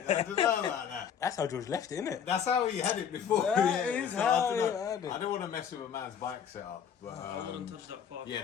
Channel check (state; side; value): quieter; right; 8.0 dB